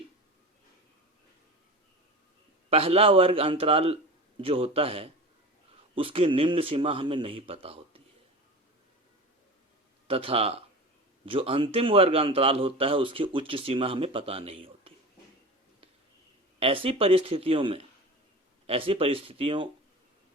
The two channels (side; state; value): both; normal; correlation 0.32